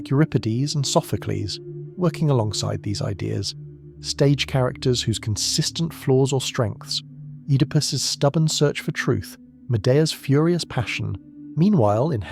Euripides and Sophocles, working alongside these ideas, stage characters whose consistent flaws or strengths, Oedipus's stubborn search for truth, Medea's furious passion. Meanwhile, in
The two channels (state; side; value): identical; both; correlation 1.00